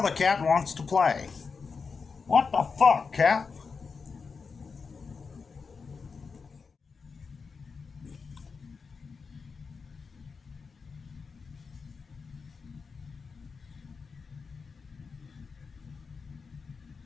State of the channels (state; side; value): quieter; right; 5.1 dB